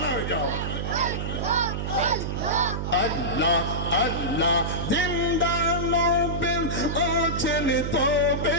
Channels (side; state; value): right; noise; hum, 3 dB below the sound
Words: হয়ে যাও আল্লাহ আল্লাহ জিন্দা নবীর আছেন